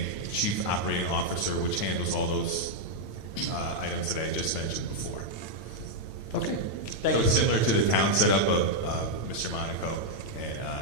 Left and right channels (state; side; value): late; right; 8.9 ms